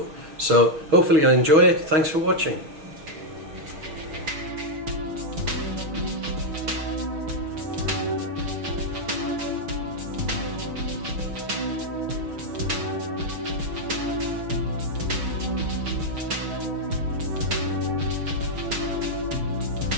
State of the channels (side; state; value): left; late; 6.3 ms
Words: So hopefully you'll enjoy it. Thanks for watching.